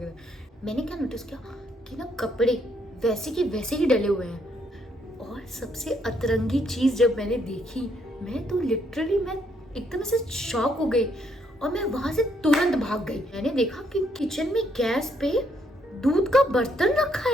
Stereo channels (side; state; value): both; normal; correlation 0.72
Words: मैंने क्या नोटिस किया कि ना कपड़े वैसे के वैसे ही डले हुए हैं। और सबसे अतरंगी चीज जब मैंने देखी, मैं तो लिटरली मैं एकदम से शॉक हो गई, और मैं वहां से तुरंत भाग गई। मैंने देखा कि किचन में गैस पे दूध का बर्तन रखा